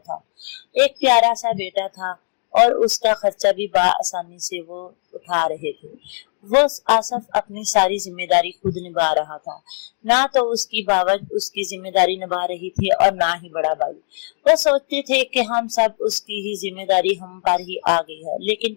एक प्यारा सा बेटा था और उसका खर्चा भी आसानी से वो उठा रहे थे। वो आसफ अपनी सारी जिम्मेदारी खुद निभा रहा था। ना तो उसकी बावत उसकी जिम्मेदारी निभा रही थी और ना ही बड़ा भाई। वो सोचते थे कि हम सब उसकी ही जिम्मेदारी हम पर ही आ गई है, लेकिन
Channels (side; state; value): right; silent; digital silence